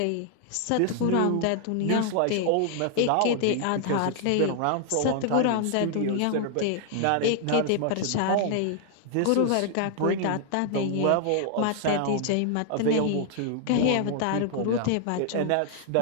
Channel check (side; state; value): both; different; correlation 0.00